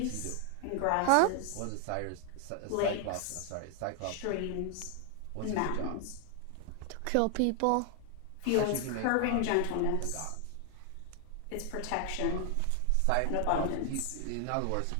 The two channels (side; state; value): both; different; correlation 0.00